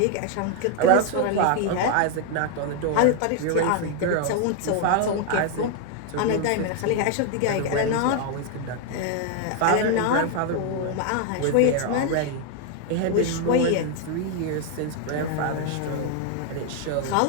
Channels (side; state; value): both; different; correlation 0.00